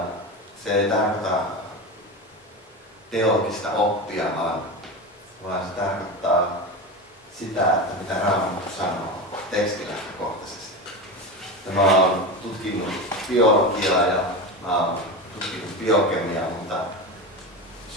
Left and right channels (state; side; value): normal; both; correlation 0.23